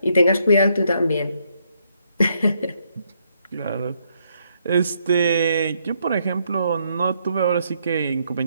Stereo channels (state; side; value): inverted; both; correlation -0.74